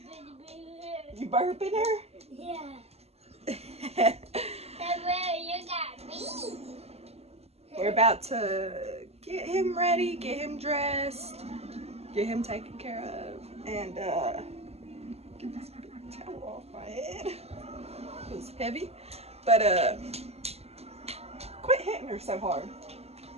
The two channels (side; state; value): left; late; 0.30 ms